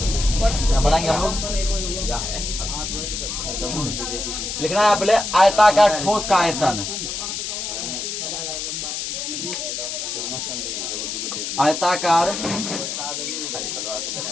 बनाएंगे हम लोग। लिखना है पहले आयताकार ठोस का आयतन, आयताकार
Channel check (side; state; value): left; noise; hiss, 4 dB below the sound